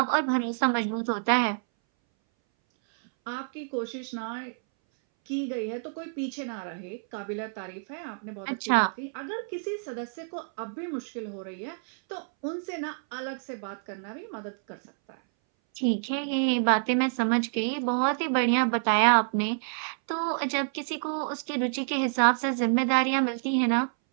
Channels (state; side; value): silent; left; 59 dB below the other